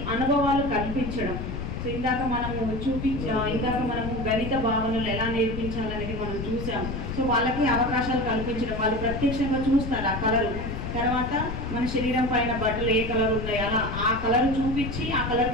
అనుభవాలు కల్పించడం. సో ఇందాక మనము గణిత భావనలు ఎలా నేర్పించాలనేది మనం చూసాం. సో వాళ్ళకి అవకాశాలు కల్పించడం, వాళ్ళు ప్రత్యక్షంగా చూస్తారు ఆ కలరు, తర్వాత మన శరీరం పైన బట్టలు ఏ కలర్ ఉన్నాయి అలా ఆ కలర్ చూపించి ఆ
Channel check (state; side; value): noise; left; rumble, 5 dB below the sound